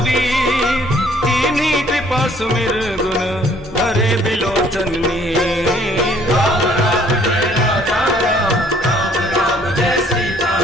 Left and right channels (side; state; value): both; normal; correlation 0.60